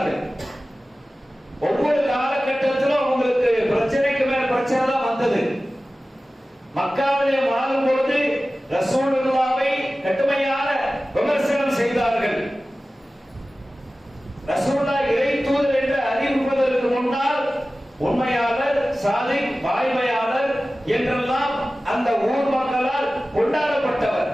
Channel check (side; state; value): both; normal; correlation 0.96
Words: ஒவ்வொரு காலகட்டத்திலும் அவங்களுக்கு பிரச்சனைக்கு மேல் பிரச்சனை தான் வந்தது. மக்காவிலே வாழும் பொழுது ரசூலுல்லாஹ்வை கடுமையான விமர்சனம் செய்தார்கள். ரசூலுல்லாஹ் இறை தூதர் என்று அறிவிப்பதற்கு முன்னால் உண்மையாளர், சாதிக், வாய்மையாளர் என்றெல்லாம் அந்த ஊர் மக்களால் கொண்டாடப்பட்டவர்.